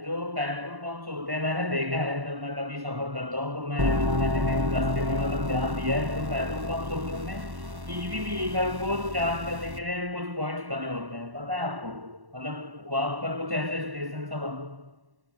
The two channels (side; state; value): left; late; 1.1 ms